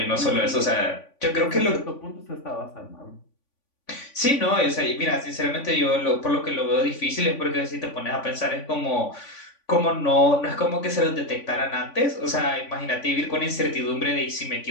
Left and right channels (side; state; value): right; late; 3.5 ms